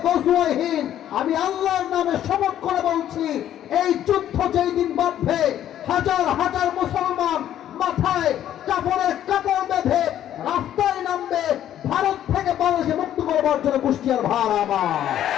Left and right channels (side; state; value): right; quieter; 11.3 dB